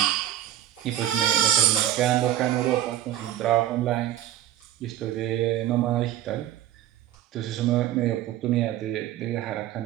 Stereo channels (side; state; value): left; quieter; 12.5 dB